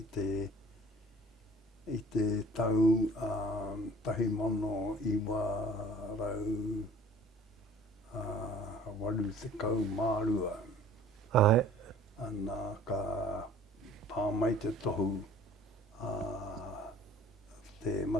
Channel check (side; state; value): both; normal; correlation 0.50